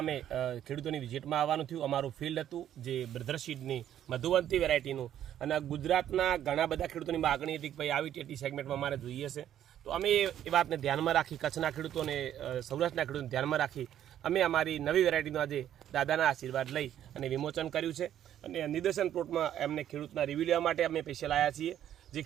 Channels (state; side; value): quieter; left; 10.9 dB